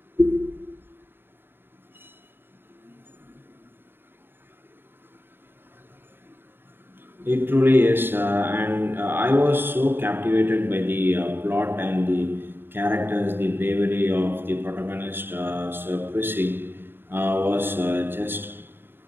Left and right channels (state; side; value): late; left; 0.10 ms